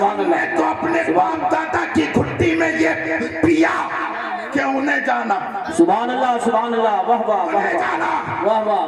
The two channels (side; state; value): both; identical; correlation 1.00